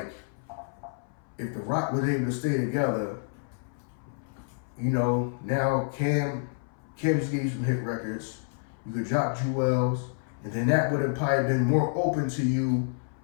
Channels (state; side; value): silent; right; 59 dB below the other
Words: if the Roc was able to stay together, you know, now Cam just gave you some hit records. You could drop Jewels, and then that would have probably been more open to you